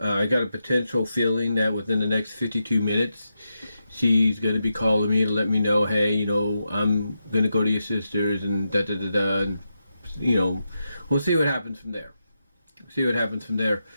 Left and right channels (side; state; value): both; inverted; correlation -0.87